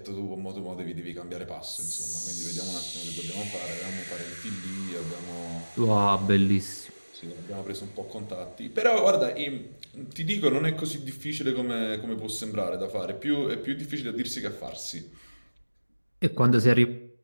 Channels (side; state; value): both; inverted; correlation -1.00